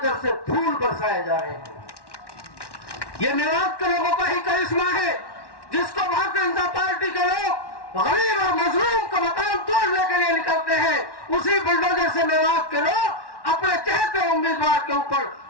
से फूल बरसाए जा रहे हैं। ये मेवात के लोगों का ही करिश्मा है, जिसको भारतीय जनता पार्टी के लोग गरीब और मजलूम का मकान तोड़ने के लिए निकलते हैं, उसी बुलडोजर से मेवात के लोग अपने चहते उम्मीदवार के ऊपर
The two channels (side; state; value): right; late; 1.1 ms